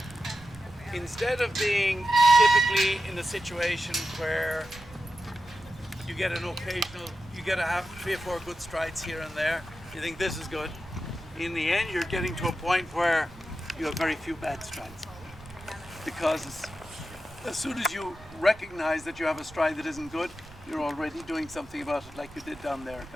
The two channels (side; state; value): right; noise; rumble, 20 dB below the sound